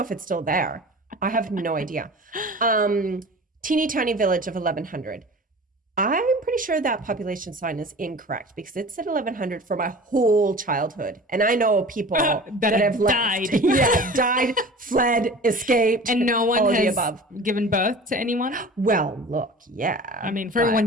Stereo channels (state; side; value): normal; both; correlation 0.40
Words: if it's still there. I have no idea. Teeny tiny village of 1,100. I'm pretty sure that population sign is incorrect because it said 1,100 for my whole childhood. And I know people that have died. Left. Died, fled, escaped. And no one has given birth to anyone? Well, look, yeah. I mean, for everyone